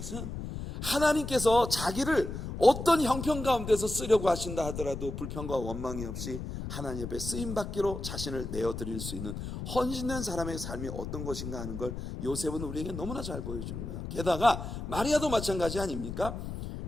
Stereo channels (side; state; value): left; noise; rumble, 7 dB below the sound